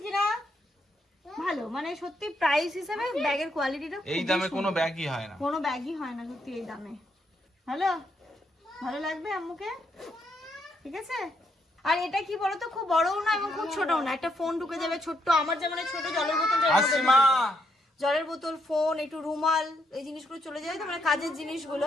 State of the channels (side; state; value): both; normal; correlation 0.76